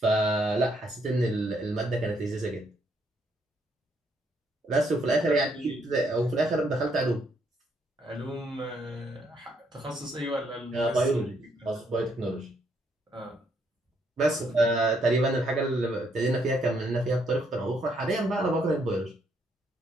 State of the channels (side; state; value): both; normal; correlation 0.72